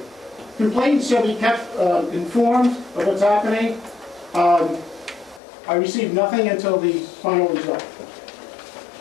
Complainants shall be kept informed of what's happening. I received nothing until the final result.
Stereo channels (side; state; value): right; drops out; at 5.4 s